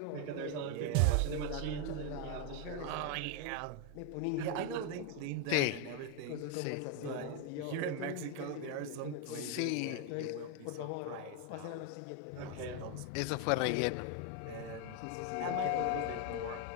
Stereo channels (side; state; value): both; different; correlation 0.01